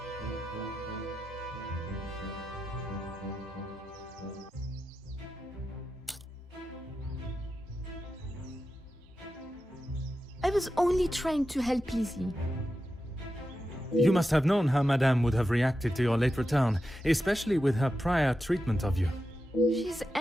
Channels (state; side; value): normal; both; correlation 0.90